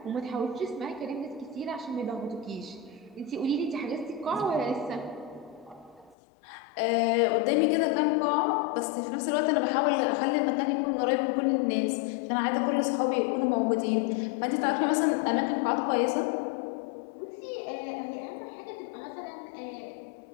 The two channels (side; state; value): right; drops out; at 6.2 s